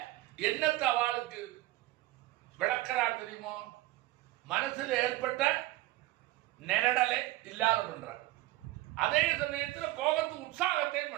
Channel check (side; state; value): left; quieter; 17.5 dB